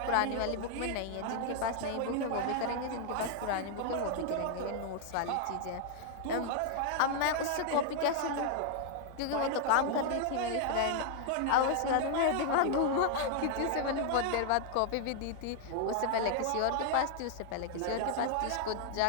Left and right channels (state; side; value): different; both; correlation -0.01